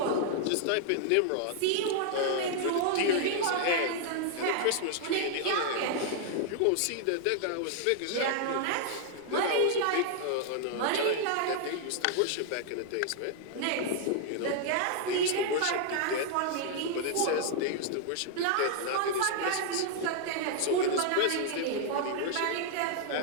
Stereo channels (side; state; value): both; different; correlation 0.00